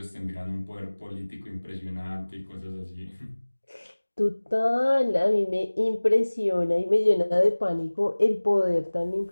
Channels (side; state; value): both; inverted; correlation -1.00